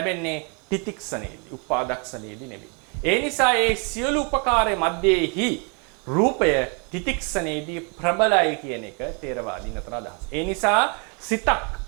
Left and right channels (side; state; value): left; quieter; 35.2 dB